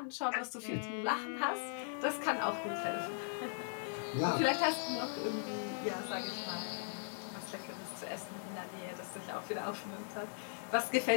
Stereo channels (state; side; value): silent; right; digital silence